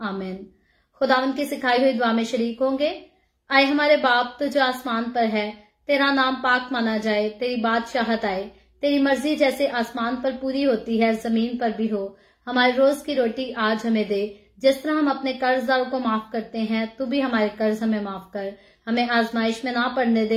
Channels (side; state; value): both; identical; correlation 1.00